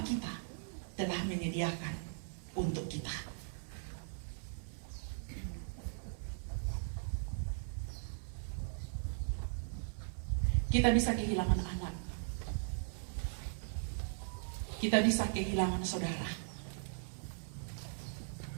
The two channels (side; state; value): left; silent; 52 dB below the other